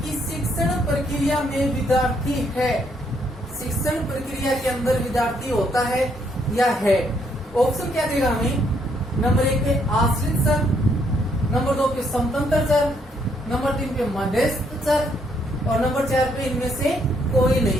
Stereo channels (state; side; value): normal; both; correlation 0.71